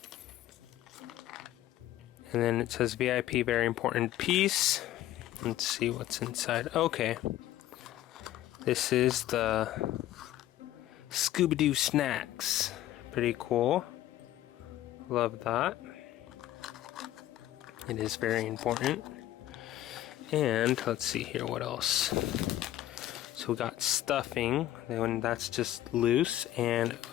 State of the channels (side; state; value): right; quieter; 13.7 dB